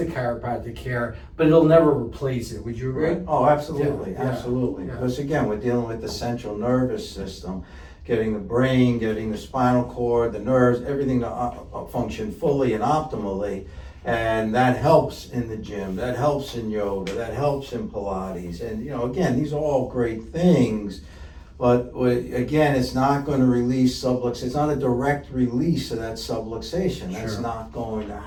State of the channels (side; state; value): both; identical; correlation 1.00